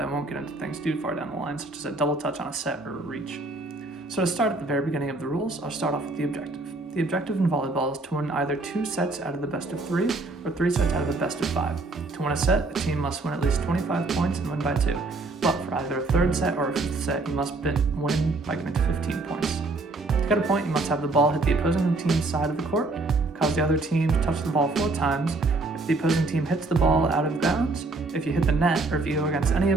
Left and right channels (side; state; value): left; quieter; 3.3 dB